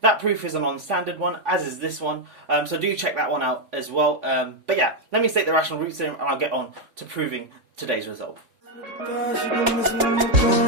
That proof is a non-standard one, as is this one, so do check that one out as well. But yeah, let me state the rational roots theorem and I'll get on to proving today's result.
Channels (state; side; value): late; left; 3.5 ms